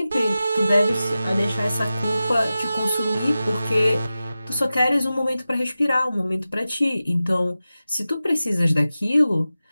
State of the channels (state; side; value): inverted; both; correlation -0.95